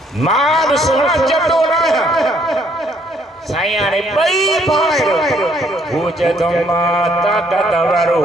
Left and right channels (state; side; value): normal; both; correlation 0.66